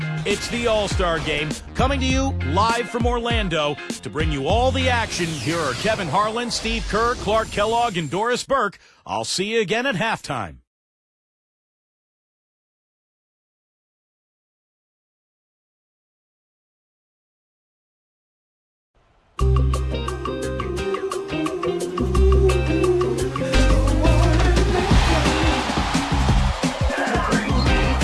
It's the All-Star Game, coming to you live from Orlando. To bring you all the action, here are Kevin Harlan, Steve Kerr, Clark Kellogg, and Doris Burke. I'll see you again at halftime.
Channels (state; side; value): identical; both; correlation 1.00